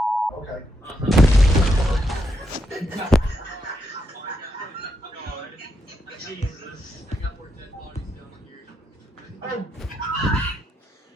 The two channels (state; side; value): normal; both; correlation 0.81